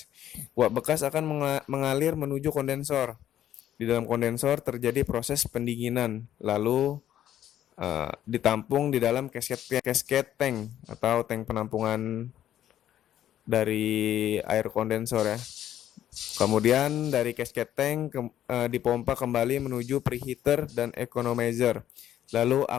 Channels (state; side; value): quieter; right; 11.5 dB